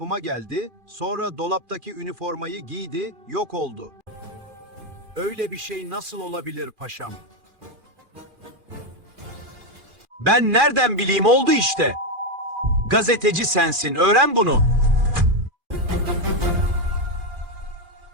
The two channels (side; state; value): left; late; 2.4 ms